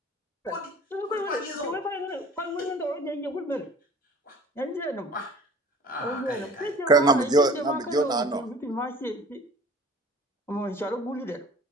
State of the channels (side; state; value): both; normal; correlation 0.46